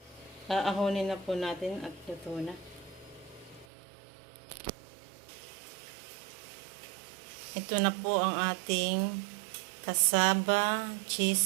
Aahonin na po natin at luto na. Ito na po ang ating kasaba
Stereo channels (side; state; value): left; drops out; at 3.7 s